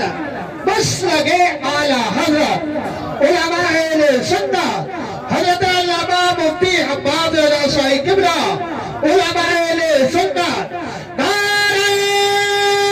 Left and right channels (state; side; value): identical; both; correlation 1.00